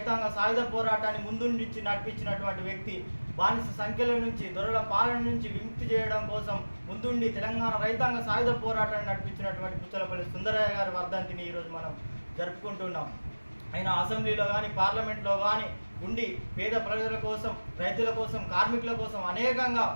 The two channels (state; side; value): inverted; both; correlation -1.00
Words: సాయుధ పోరాటాన్ని ముందుండి నడిపించినటువంటి వ్యక్తి, బానిస సంఖ్యల నుంచి, దొరల పాలన నుంచి విముక్తి చేయడం కోసం ముందుండి తెలంగాణ రైతాంగ సాయుధ పోరాటాన్ని నడిపించినటువంటి పుచ్చలపల్లి సుందరయ్య గారి వర్ధంతిని ఈరోజు మనం జరుపుకుంటున్నాం. ఆయన అసెంబ్లీలో కానీ పార్లమెంట్లో కానీ ఉండి పేద ప్రజల కోసం, రైతుల కోసం, కార్మికుల కోసం అనేకంగా